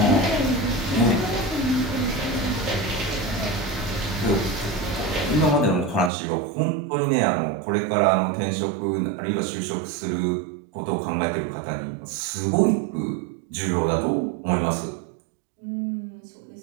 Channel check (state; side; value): drops out; left; at 6.1 s